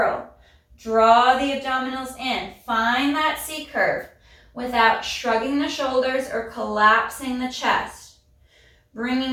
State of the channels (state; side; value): identical; both; correlation 1.00